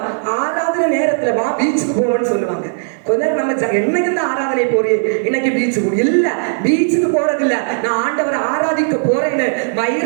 ஆராதனை நேரத்துல வா பீச்சுக்கு போவோம்னு சொல்லுவாங்க. கொஞ்ச நேரம் நம்ம என்னைக்கு இந்த ஆராதனை போறீ, இன்னைக்கு பீச்சுக்கு இல்ல, பீச்சுக்கு போறது இல்ல, நான் ஆண்டவரை ஆராதிக்க போறேன்னு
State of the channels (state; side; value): silent; left; 57 dB below the other